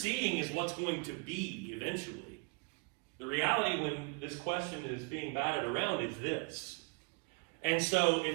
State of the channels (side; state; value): left; quieter; 33.5 dB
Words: is what's going to be eventually. The reality when this question is being batted around is this. And so